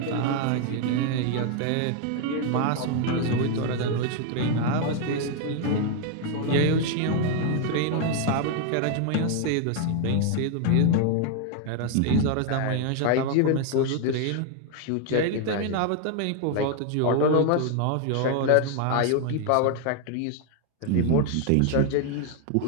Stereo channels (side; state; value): both; different; correlation 0.01